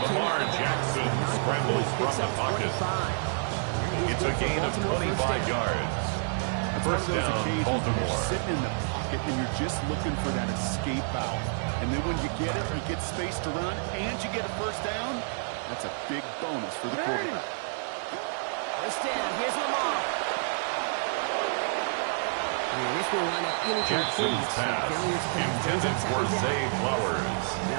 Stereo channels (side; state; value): left; silent; 59 dB below the other